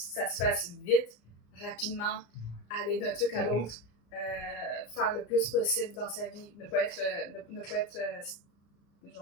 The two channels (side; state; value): right; late; 34 ms